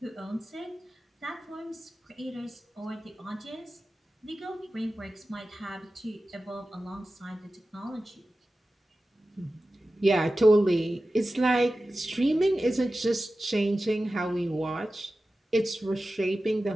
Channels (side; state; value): both; normal; correlation 0.95